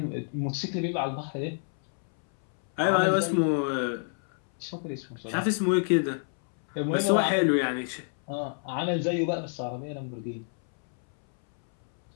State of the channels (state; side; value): silent; right; 59 dB below the other